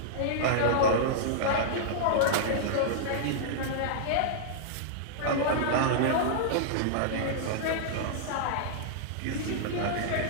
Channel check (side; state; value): both; different; correlation -0.02